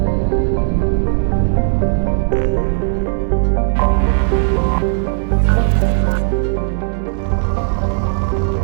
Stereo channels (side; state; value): left; silent; digital silence